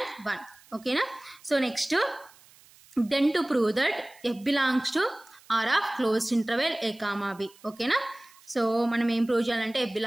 1. ఓకేనా. So next then to prove that f belongs to R of closed interval a comma b. ఓకేనా. So మనం ఏం prove చేయాలంటే f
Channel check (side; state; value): right; noise; hiss, 26 dB below the sound